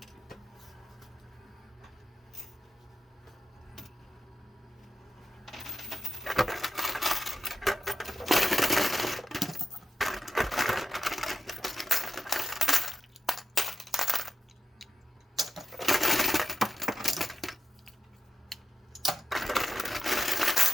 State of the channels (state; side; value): normal; both; correlation 0.86